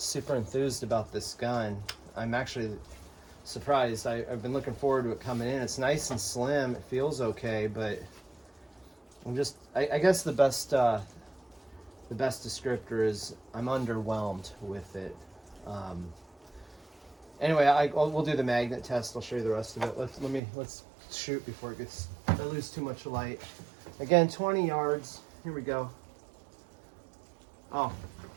enthused about this gun. I'm actually surprised. I've been looking forward to it coming in. It's nice and slim. It feels okay, but I guess the best descriptor is I'm underwhelmed with it. Anyway, we'll do the magnet test. I'll show you the rest of it. Let's shoot before I lose too much light. Again, 20 yards. Here we go. Oh,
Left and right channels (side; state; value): left; drops out; at 20.4 s